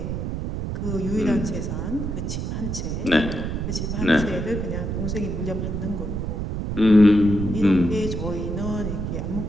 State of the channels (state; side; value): noise; right; rumble, 3 dB below the sound